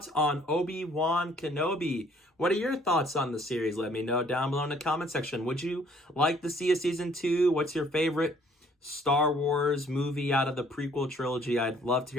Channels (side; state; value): both; normal; correlation 0.60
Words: on Obi-Wan Kenobi. What are your thoughts on the series? Let me know down below in the comment section. Would you like to see a season 2? What's your favorite Star Wars movie out of the prequel trilogy? I'd love to